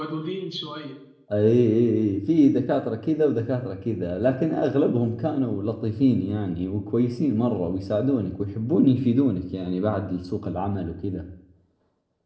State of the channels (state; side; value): identical; both; correlation 1.00